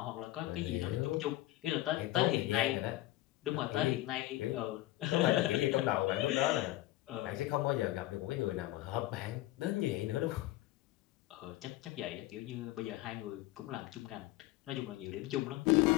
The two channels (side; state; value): right; quieter; 16.7 dB